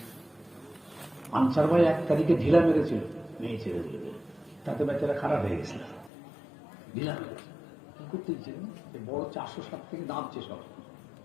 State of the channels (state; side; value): drops out; right; at 6.1 s